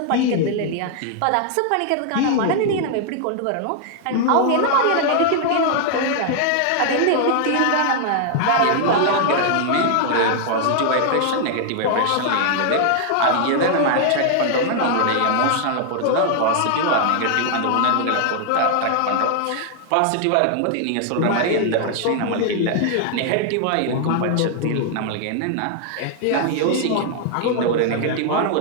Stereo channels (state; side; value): different; both; correlation 0.00